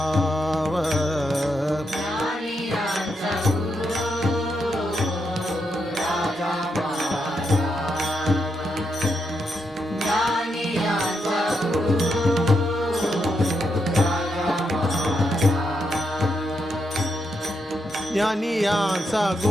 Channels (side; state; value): both; normal; correlation 0.81